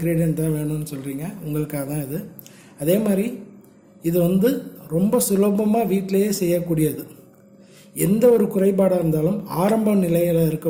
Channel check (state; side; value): identical; both; correlation 1.00